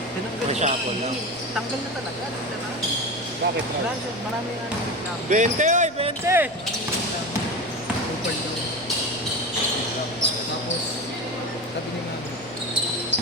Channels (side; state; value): right; noise; rumble, 25 dB below the sound